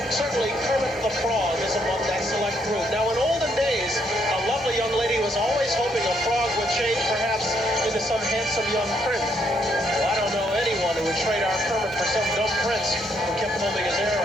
Certainly, Kermit the Frog is among that select group. Now, in olden days, a lovely young lady was always hoping a frog would change perhaps into some handsome young prince. Well, I don't know anyone who would trade our Kermit for some dumb prince who kept combing his hair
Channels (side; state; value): both; normal; correlation 0.73